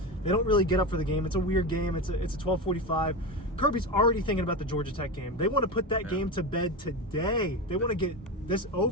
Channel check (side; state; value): both; normal; correlation 0.20